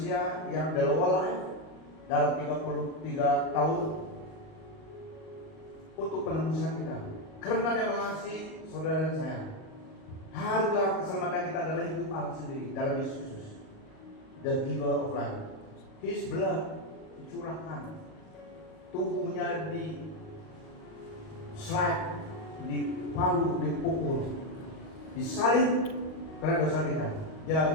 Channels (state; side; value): late; right; 38 ms